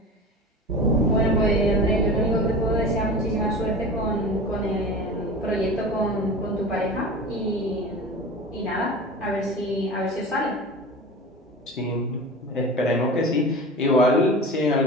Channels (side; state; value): both; normal; correlation 0.33